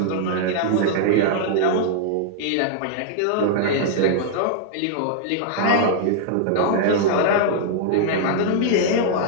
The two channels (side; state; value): both; different; correlation -0.01